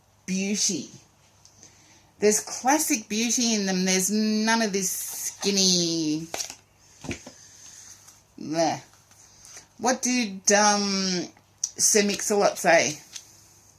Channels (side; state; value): both; identical; correlation 1.00